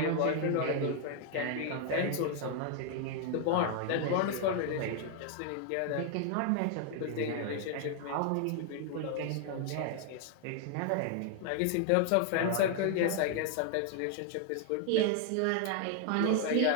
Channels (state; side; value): different; both; correlation 0.00